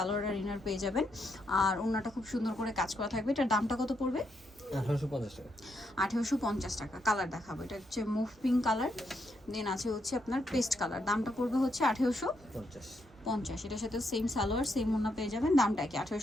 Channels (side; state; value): both; normal; correlation 0.79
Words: আর ইনার পেয়ে যাবেন। আর ওড়নাটা খুব সুন্দর করে কাজ করা থাকবে। এটার দামটা কত পড়বে? 1850 টাকা। 1850 টাকা। কালার দেখাবো, এটা হচ্ছে মুভ পিঙ্ক কালার, দেন আছে হচ্ছে আপনার পেস্ট কালার। দামটা পড়বে হচ্ছে 1850। এটার সাথে সেম সালোয়ার সেম ওড়না পেয়ে যাবেন, দামটা কি